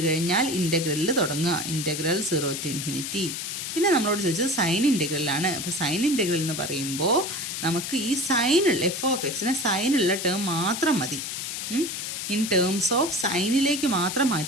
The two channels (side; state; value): left; noise; hiss, 5 dB below the sound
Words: കഴിഞ്ഞാൽ ഇൻ്റഗ്രലിൽ തുടങ്ങുക. Integral 0 to ∞. പിന്നെ നമ്മളോട് ചോദിച്ചത് സൈൻ ഇൻ്റഗ്രലാണ്. അപ്പോൾ സൈൻ ഇൻ്റഗ്രൽ എന്ന് പറയുമ്പോൾ നമുക്ക് ഈ സൈനുള്ള f(x)നെ സൈനുള്ള ടേം മാത്രം മതി. ഇൻ ടേംസ് ഓഫ് സൈനിലേക്ക് മാത്രം